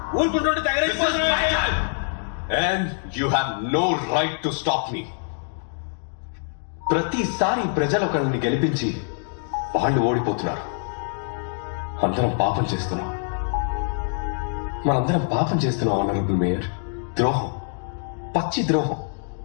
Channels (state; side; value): silent; right; digital silence